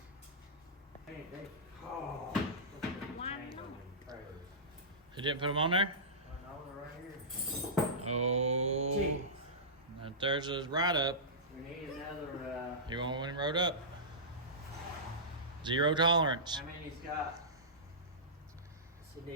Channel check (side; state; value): both; normal; correlation -0.18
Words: man. Hey, hey. Oh. Why not? You didn't put them on there? No, they're right here. Oh. Gee. Now there's a ride up. We need another, You want one rode up? Zero tolerance. how many's got? So